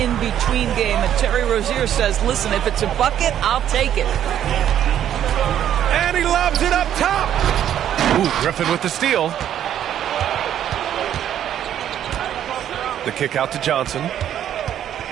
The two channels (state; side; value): quieter; left; 10.5 dB